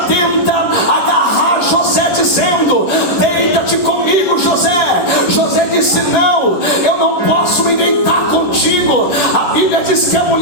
tenta agarrar José, dizendo: deita-te comigo, José. José disse: não, eu não posso me deitar contigo. A Bíblia diz que a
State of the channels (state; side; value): late; right; 11 ms